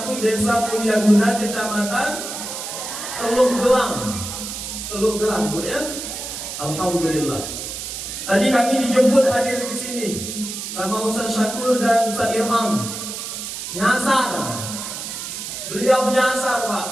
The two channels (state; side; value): noise; right; hiss, 7 dB below the sound